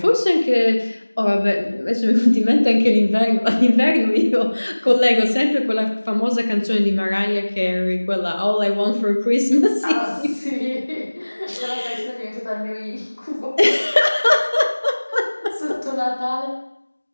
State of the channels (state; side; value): inverted; both; correlation -1.00